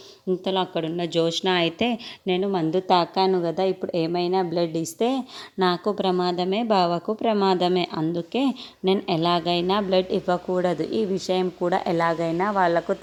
ఇంతలో అక్కడున్న జోష్న అయితే, నేను మందు తాకాను కదా, ఇప్పుడు ఏమైనా బ్లడ్ ఇస్తే నాకు ప్రమాదమే, బావకు ప్రమాదమే. అందుకే నేను ఎలాగైనా బ్లడ్ ఇవ్వకూడదు, ఈ విషయం కూడా ఎలాగైనా వాళ్ళకు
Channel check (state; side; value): identical; both; correlation 1.00